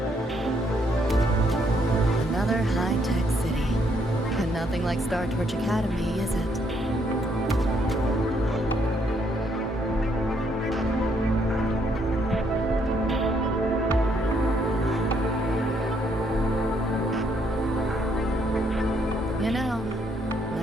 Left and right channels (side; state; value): both; normal; correlation 0.71